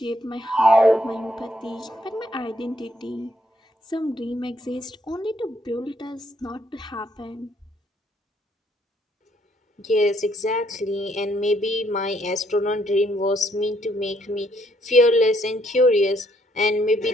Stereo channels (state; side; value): normal; both; correlation 0.70